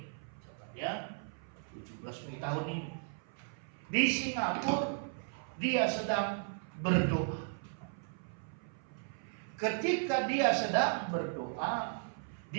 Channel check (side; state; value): left; silent; 54 dB below the other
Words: Catat ya. 17 Mei tahun ini. Di Singapura dia sedang berdoa. Ketika dia sedang berdoa,